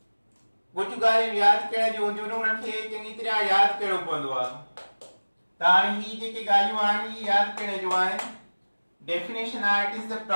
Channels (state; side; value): inverted; both; correlation -1.00